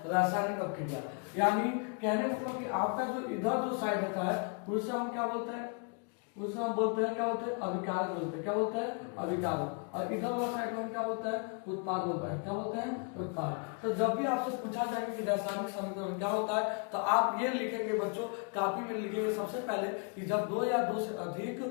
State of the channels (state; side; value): quieter; right; 39.8 dB